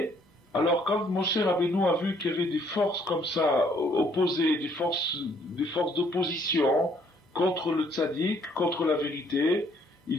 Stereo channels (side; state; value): both; normal; correlation 0.65